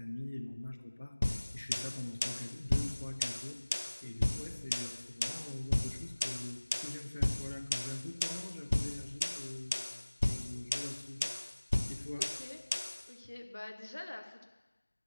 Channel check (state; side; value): inverted; both; correlation -1.00